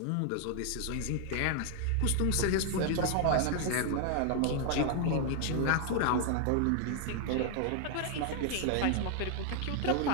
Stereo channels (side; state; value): both; different; correlation 0.00